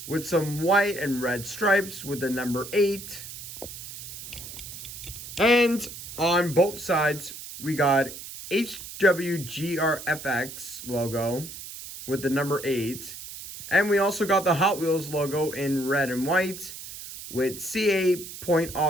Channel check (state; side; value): noise; right; hiss, 11 dB below the sound